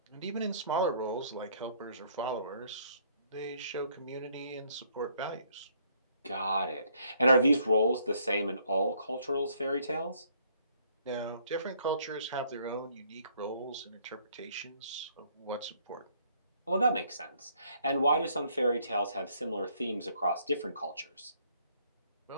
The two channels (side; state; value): both; inverted; correlation -0.65